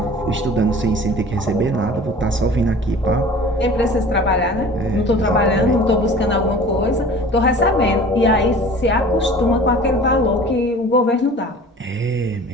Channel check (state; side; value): normal; both; correlation 0.43